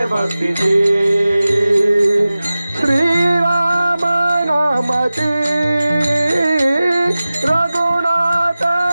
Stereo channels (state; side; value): inverted; both; correlation -0.96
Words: भक्तीचे. श्रीराम नामाचे रघुनाथ